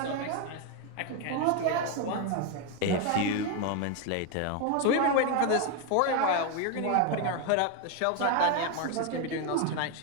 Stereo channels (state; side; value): different; both; correlation 0.01